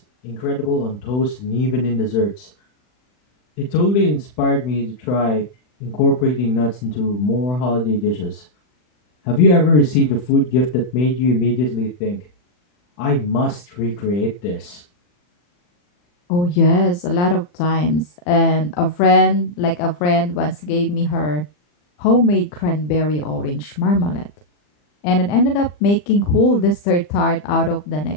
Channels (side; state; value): right; late; 40 ms